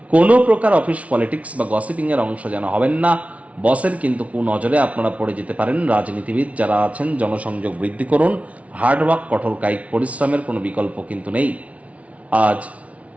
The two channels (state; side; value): late; left; 0.065 ms